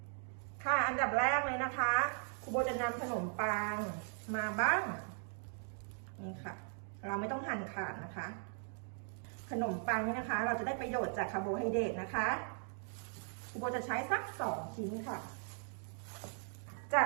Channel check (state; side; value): silent; left; 52 dB below the other